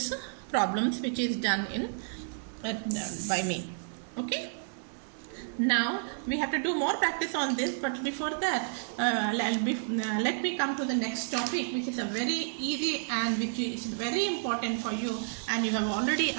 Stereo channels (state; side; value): silent; left; 57 dB below the other